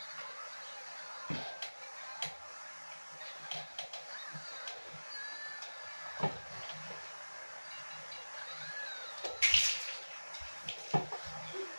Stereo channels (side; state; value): both; inverted; correlation -1.00